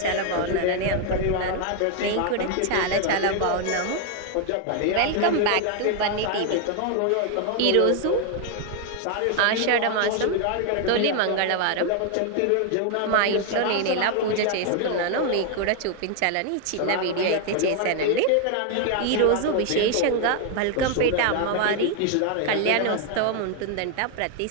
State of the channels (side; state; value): both; different; correlation 0.00